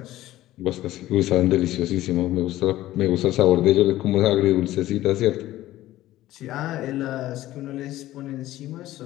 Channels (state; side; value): quieter; right; 15.2 dB